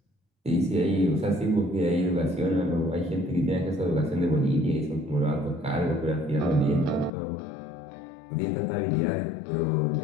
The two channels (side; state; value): right; drops out; at 7.1 s